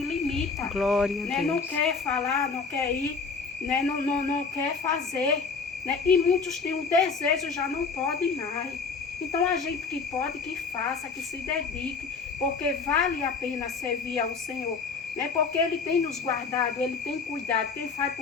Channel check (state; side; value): quieter; right; 4.9 dB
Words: Glória a né? Não Deus. quer falar, não quer ir, né? Não quer fazer. Né? E muitos têm um desejo, já não podem mais. Então a gente que pode, que faça, que se dedique, porque vale a pena servir ao Senhor. Né? Porque Ele tem nos guardado, Ele tem cuidado. Quem faz